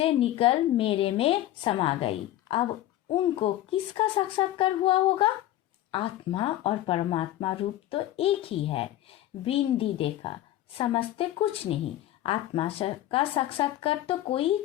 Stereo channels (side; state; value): right; quieter; 13.8 dB